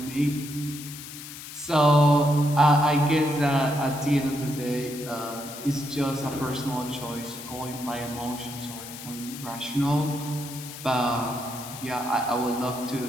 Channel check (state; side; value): noise; left; hiss, 12 dB below the sound